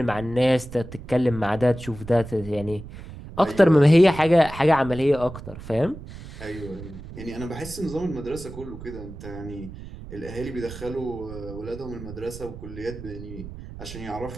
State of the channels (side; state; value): right; noise; rumble, 13 dB below the sound